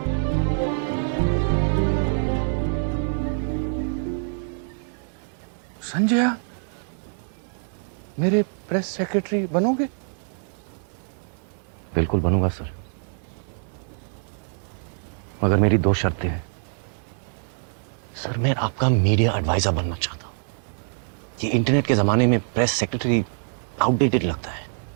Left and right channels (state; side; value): silent; left; digital silence